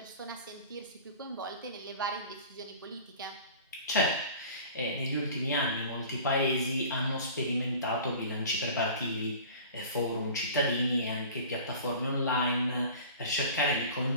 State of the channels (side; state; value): both; inverted; correlation -0.42